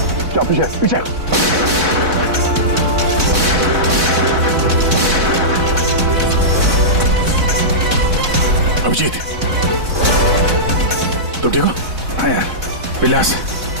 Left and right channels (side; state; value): left; late; 4.0 ms